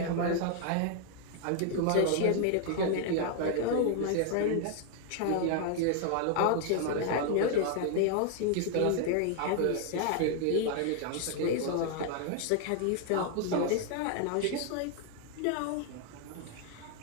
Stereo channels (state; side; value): different; both; correlation 0.00